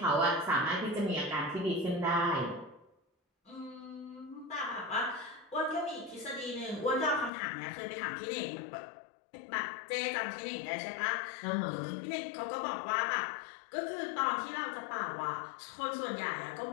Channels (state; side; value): drops out; right; at 7.3 s